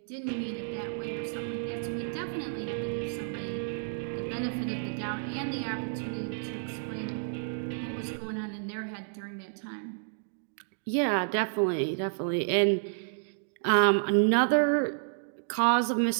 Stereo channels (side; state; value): left; silent; digital silence